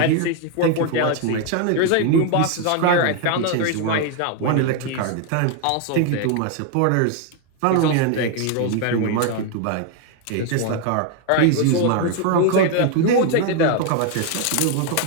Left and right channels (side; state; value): both; different; correlation 0.01